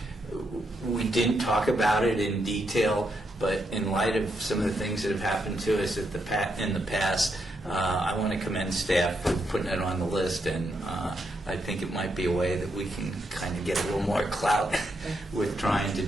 we didn't talk about it in detail, but in light of some of the things that have happened to us in the past, I want to commend staff for putting it on the list, and I think it might be a way that we can kind of get a little more clout with trying to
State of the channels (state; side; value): normal; both; correlation 0.80